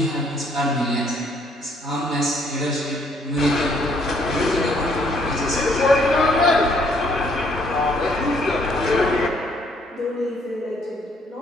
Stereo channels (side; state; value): both; normal; correlation 0.66